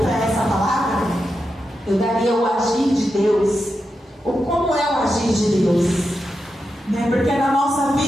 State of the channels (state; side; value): normal; both; correlation 0.88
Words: essa palavra, eu daria o agir de Deus. Ou como é o agir de Deus? Porque na nossa